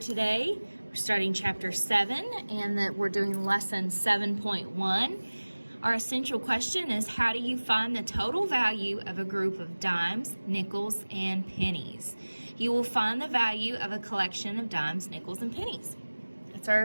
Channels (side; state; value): both; inverted; correlation -1.00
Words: We're starting chapter 7 and we're doing lesson 7.1. Our essential question is, how do you find the total value of a group of dimes, nickels, and pennies? You will find the value of a collection of dimes, nickels, and pennies. That's our